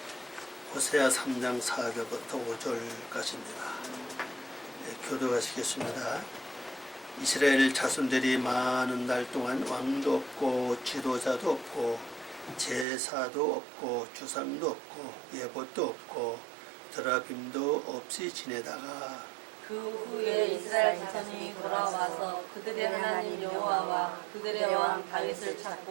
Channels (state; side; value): drops out; left; at 12.9 s